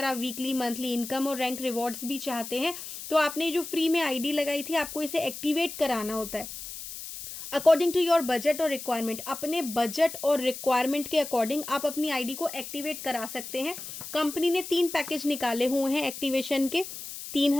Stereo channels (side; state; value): left; noise; hiss, 10 dB below the sound